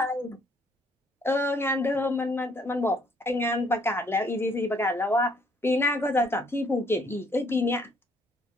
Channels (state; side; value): normal; both; correlation 0.65